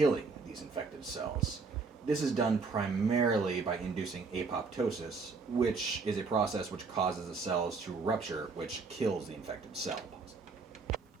these infected cells. This is done primarily by inducing apoptosis, which is a process which causes the cells to rupture, which kills the infected cell.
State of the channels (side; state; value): left; quieter; 4.5 dB